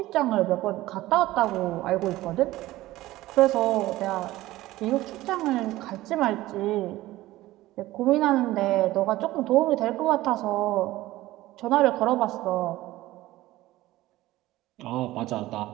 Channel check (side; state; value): left; quieter; 16.9 dB